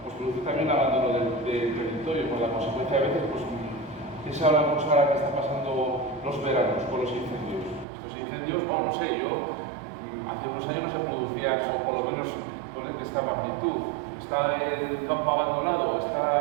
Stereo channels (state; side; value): drops out; left; at 7.9 s